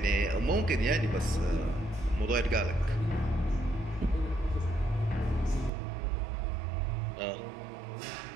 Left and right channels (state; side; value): drops out; left; at 5.7 s